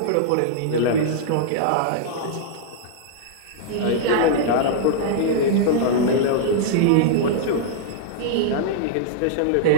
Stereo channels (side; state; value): both; different; correlation -0.02